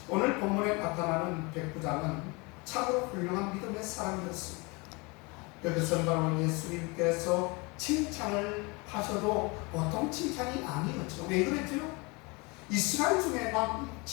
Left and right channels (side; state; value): right; quieter; 27.6 dB